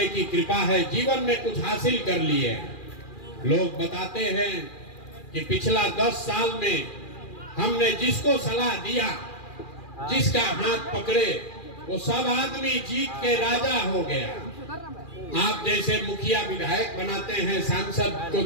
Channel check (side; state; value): right; late; 2.4 ms